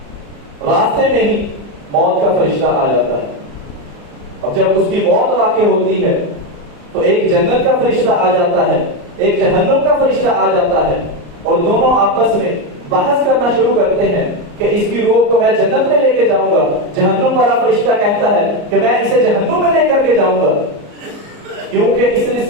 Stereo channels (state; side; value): late; left; 34 ms